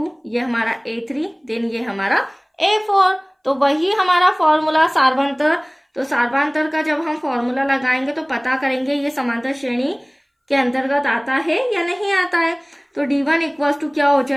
ये हमारा A3, देन ये हमारा A4। तो वही हमारा फॉर्मूला सार्वंतर। तो सार्वंतर का जब हम फॉर्मूला लगाएंगे तो पता करेंगे ये समांतर श्रेणी के अंतर्गत आता है या नहीं आता है। तो D1 इक्वल्स टू क्या हो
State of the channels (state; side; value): identical; both; correlation 1.00